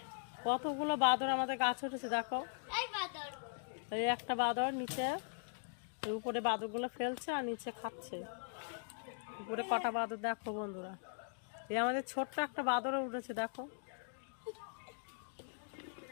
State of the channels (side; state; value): right; silent; digital silence